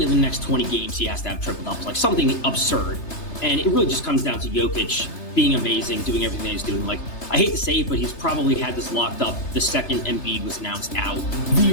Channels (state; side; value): late; right; 3.3 ms